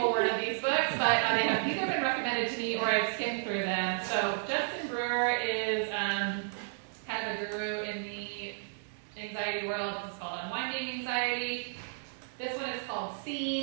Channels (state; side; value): silent; left; 56 dB below the other